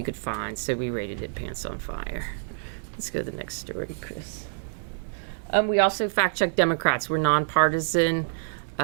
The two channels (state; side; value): silent; left; digital silence